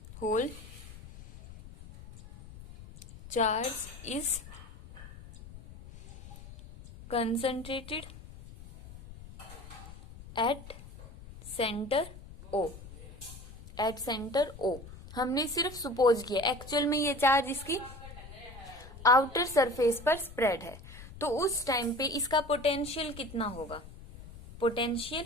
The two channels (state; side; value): noise; left; rumble, 16 dB below the sound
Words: is concentrated at center O। at center O हमने सिर्फ सपोज किया, एक्चुअल में ये चार्ज इसकी आउटर सरफेस पर स्प्रेड है। तो उस टाइम पे इसका पोटेंशियल कितना होगा, potential